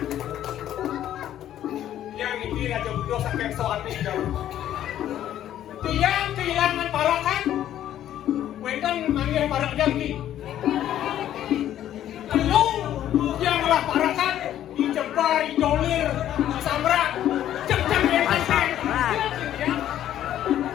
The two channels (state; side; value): quieter; right; 11.6 dB